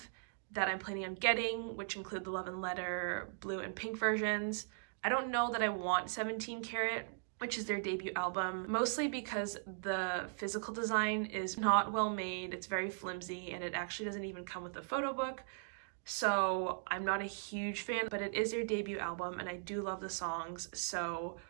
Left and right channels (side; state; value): left; silent; digital silence